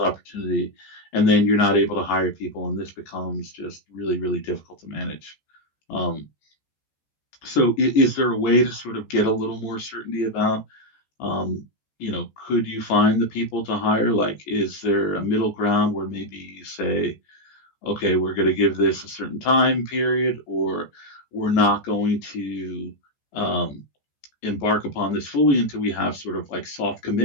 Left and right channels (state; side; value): late; right; 14 ms